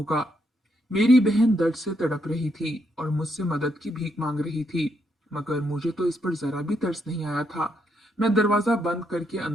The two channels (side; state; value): both; normal; correlation 0.77